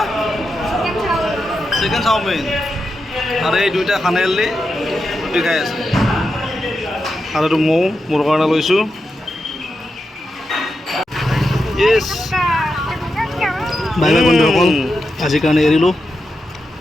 Chicken chowmein. আৰু এই দুইটা খানেলি ৰুটি খাই আছে। আৰু এইটো মৌ মোৰ কাৰণে লৈছোঁ। ইয়েছ। বাই বাই বন্ধুসকল, আজিৰ কাৰণে এৰিলোঁ।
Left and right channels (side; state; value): both; normal; correlation 0.88